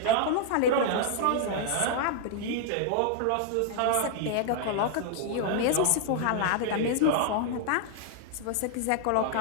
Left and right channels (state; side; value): different; both; correlation -0.01